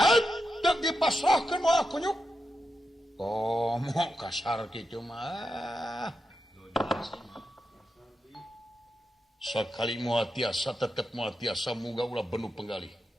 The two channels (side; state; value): both; normal; correlation 0.88